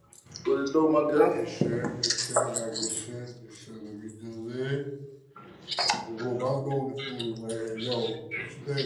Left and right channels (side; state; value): both; identical; correlation 1.00